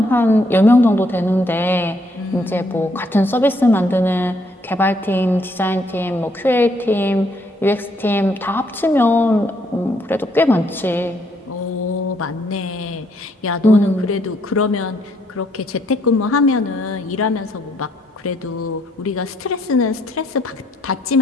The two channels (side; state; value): both; normal; correlation 0.70